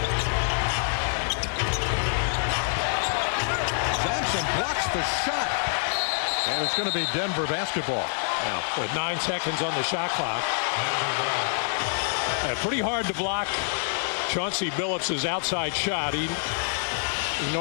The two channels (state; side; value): silent; right; 61 dB below the other